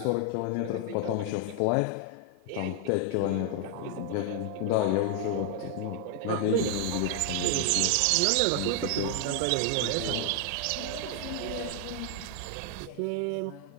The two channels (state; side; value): different; both; correlation 0.00